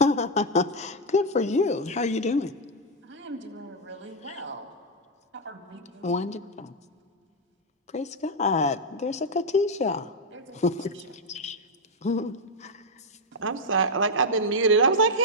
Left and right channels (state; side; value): normal; both; correlation 0.00